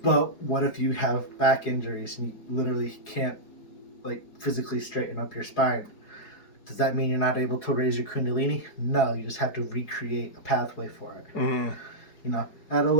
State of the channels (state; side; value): late; right; 4.7 ms